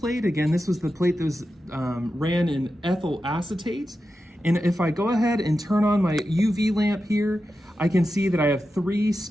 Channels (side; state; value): both; normal; correlation 0.91